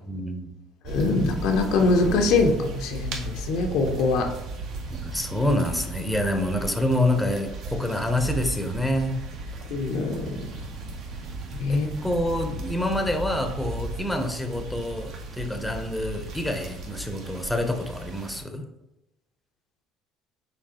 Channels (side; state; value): both; normal; correlation 0.63